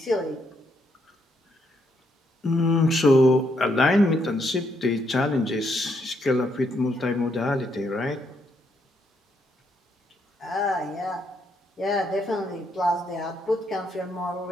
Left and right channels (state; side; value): normal; both; correlation 0.75